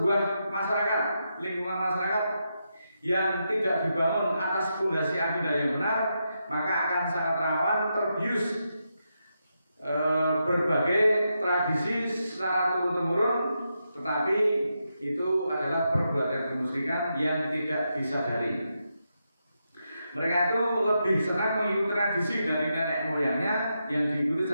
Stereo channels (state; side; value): inverted; both; correlation -0.85